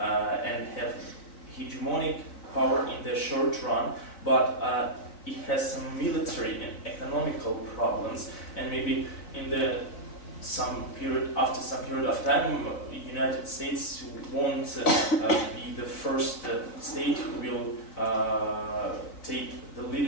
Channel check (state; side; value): late; right; 4.0 ms